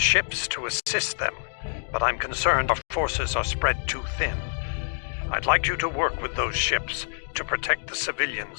to assist them, but I'm concerned our forces are spread too thin. I'd like you to work with those ships to protect the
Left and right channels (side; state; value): right; silent; digital silence